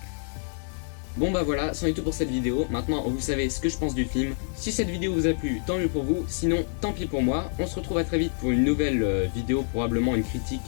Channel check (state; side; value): silent; right; 60 dB below the other